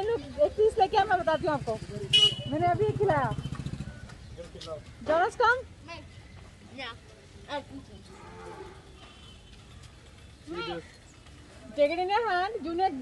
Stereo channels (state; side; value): identical; both; correlation 1.00